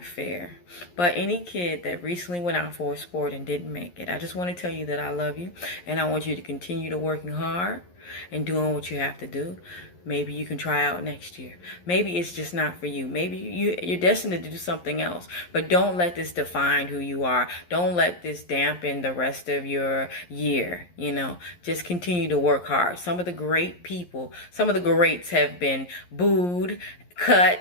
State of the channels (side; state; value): right; late; 11 ms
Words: fair. But any kid that recently went out for a sport and didn't make it, I just want to tell you that I love you. And I want you to continue to working hard and doing what you have to do. Maybe you can try out next year. Maybe it's just not for you. Maybe you're destined to do something else. But don't let this define who you are. Don't let this dampen the rest of your year. You know, just continue to work hard. Some of the great people, some of the greats have been booed, cut,